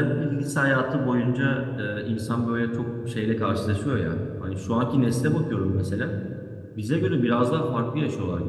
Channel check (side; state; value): both; identical; correlation 1.00